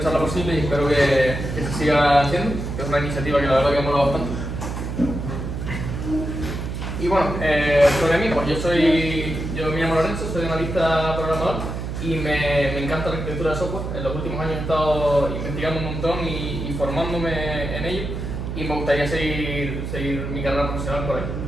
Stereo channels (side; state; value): right; noise; hum, 5 dB below the sound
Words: posible y espero que se siga haciendo, que es una iniciativa que la verdad que mola bastante. Y bueno, sobre mí, pues yo me llamo Lorenzo, soy analista programador y me encanta la arquitectura de software. En los últimos años he estado investigando un montón y formándome en ello y me gustaría seguir mi carrera profesional por ahí.